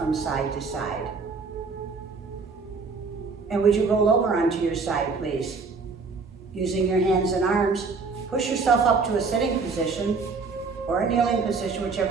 side to side. And would you roll over onto your side, please? Using your hands and arms, push yourself up to a sitting position or a kneeling position,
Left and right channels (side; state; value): left; quieter; 4.5 dB